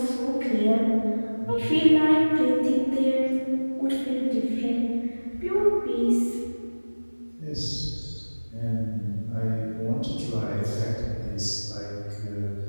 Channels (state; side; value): inverted; both; correlation -1.00